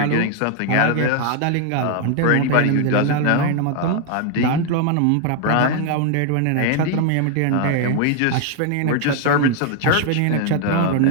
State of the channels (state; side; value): different; both; correlation 0.00